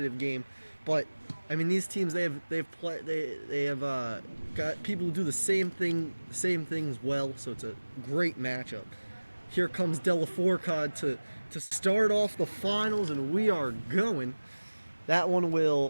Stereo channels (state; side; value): inverted; both; correlation -1.00